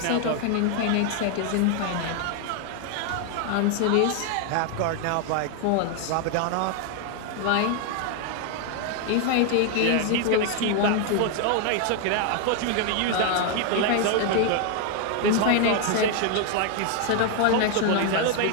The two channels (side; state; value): both; different; correlation 0.00